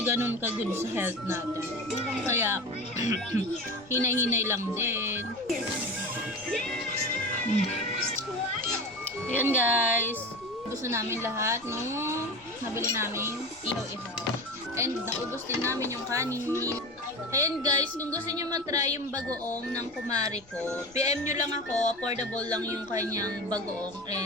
ganun ka-good sa health natin. Kaya, hinay-hinay lang din. Ayan guys. Gusto namin lahat nung nabili namin ihaw-ihaw. And naubos din namin yung kanin. Ayan guys, kung gusto nyo matry yung bagoong ng kumari ko, PM nyo lang ako, affordable lang yung kanyang bagoong.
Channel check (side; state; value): left; noise; rumble, 26 dB below the sound